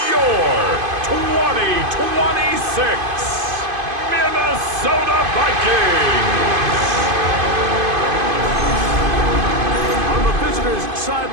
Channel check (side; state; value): left; late; 2.5 ms